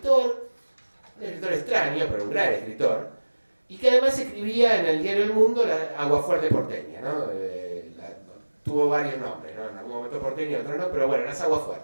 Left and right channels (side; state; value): both; inverted; correlation -1.00